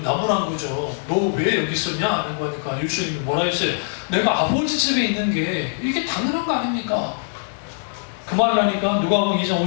거죠. 너 왜 여기 있었냐? 하는 거니까 예수님이 뭐라 했어요? 내가 아버지 집에 있는 게 이게 당연한 거 아닙니까? 그 말을 하니까 누가복음 2장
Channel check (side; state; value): right; silent; digital silence